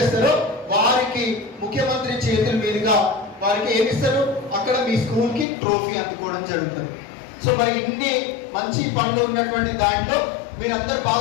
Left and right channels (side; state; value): right; drops out; at 5.5 s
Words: వారికి ముఖ్యమంత్రి చేతుల మీదుగా వారికి ఏమిస్తారు, అక్కడ మీ స్కూల్ కి ట్రోఫీ అందుకోవడం జరుగుతుంది. సో మరి ఇన్ని మంచి పనులు ఉన్నటువంటి దాంట్లో మీరందరూ